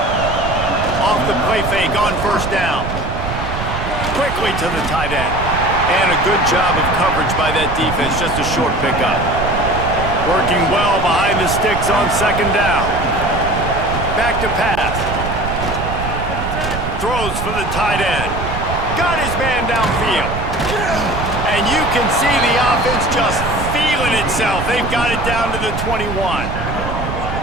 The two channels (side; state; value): right; noise; rumble, 5 dB below the sound